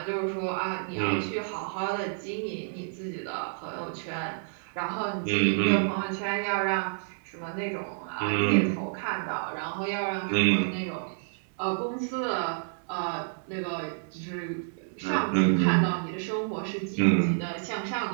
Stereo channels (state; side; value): silent; left; 58 dB below the other